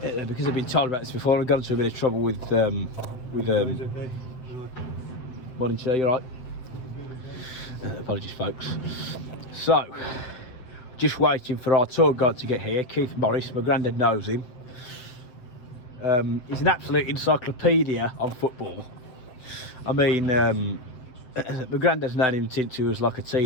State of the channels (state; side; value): late; right; 7.9 ms